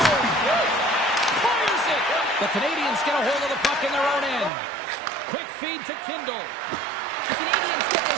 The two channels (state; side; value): drops out; left; at 4.5 s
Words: Fires it. The Canadians get a hold of the puck in their own end. Quick feed to Kindle. The Canadians get